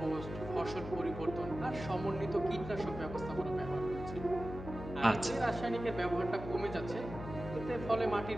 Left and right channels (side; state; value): left; noise; hum, 10 dB below the sound